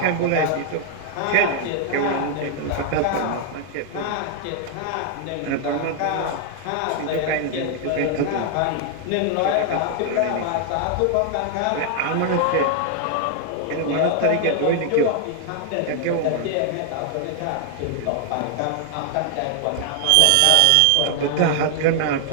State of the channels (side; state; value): both; different; correlation 0.00